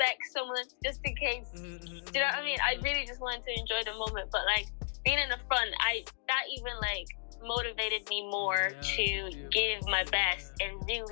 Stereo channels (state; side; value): silent; right; digital silence